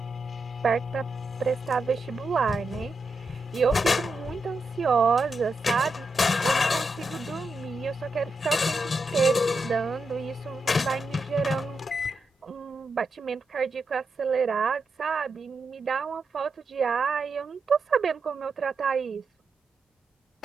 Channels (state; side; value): normal; both; correlation 0.86